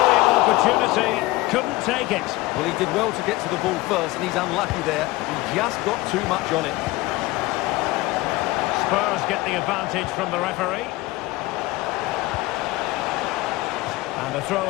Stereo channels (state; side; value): quieter; right; 19.7 dB